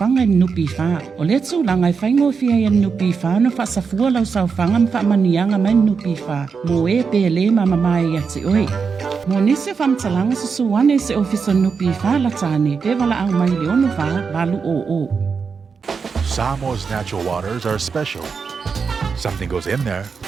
i nupi wha. O le tūlanga i whaingo fia i nupi wha na whasafua lau saufanga ma whamanianga mai nupi wha. Mo e pele mama mai ati oi. Mo nisi whamtalanga sa suwane se ofisa nupi wha la tāne. Te wala ang mai leonu wha balu o. Samoa's natural waters are special. Something goes in there,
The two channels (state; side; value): quieter; left; 5.5 dB